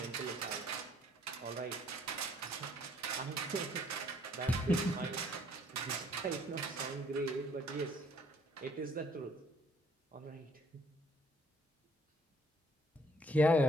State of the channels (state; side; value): normal; both; correlation 0.62